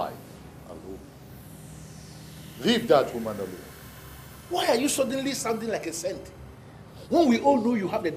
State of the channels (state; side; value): identical; both; correlation 1.00